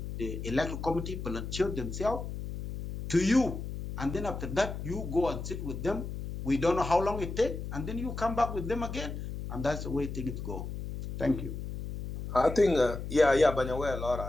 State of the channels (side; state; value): left; noise; hum, 7 dB below the sound